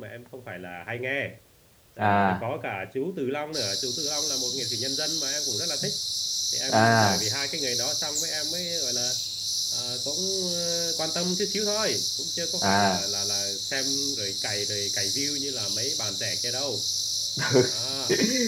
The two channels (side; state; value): both; identical; correlation 1.00